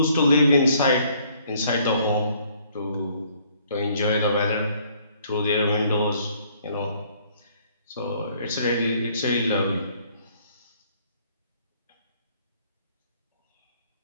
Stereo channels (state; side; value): inverted; both; correlation -0.63